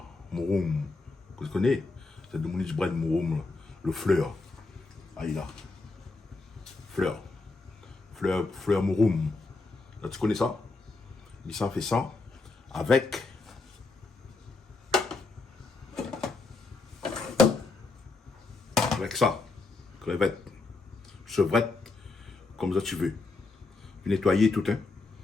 Mouroum, que tu connais? C'est de Monique Brad Mouroum, le fleur. Ah, il a. Fleur. Fleur Mouroum. Là, tu connais ça? Il s'en fait ça avec ça. Crevette. Chevrette. Comme ça tu veux. Nettoyer tout, hein.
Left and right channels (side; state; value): right; quieter; 3.7 dB